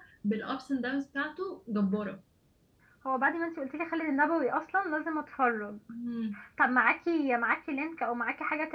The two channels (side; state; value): both; identical; correlation 1.00